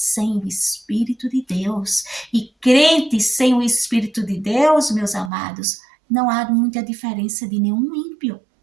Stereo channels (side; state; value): left; drops out; at 5.3 s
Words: o Espírito de Deus. E crente sem o Espírito de Deus, meus amados, não há muita diferença de nenhum ímpio.